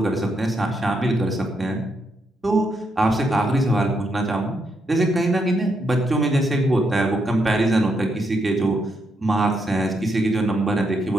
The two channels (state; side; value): normal; both; correlation 0.79